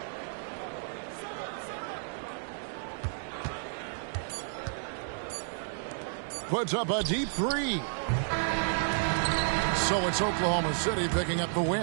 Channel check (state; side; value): silent; left; digital silence